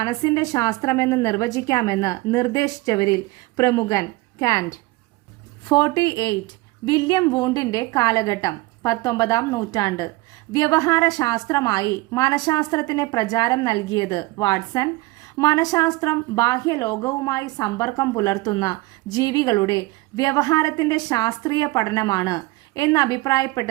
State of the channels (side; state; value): left; quieter; 21.5 dB